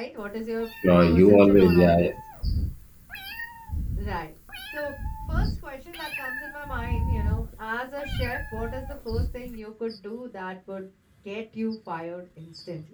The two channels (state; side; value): identical; both; correlation 1.00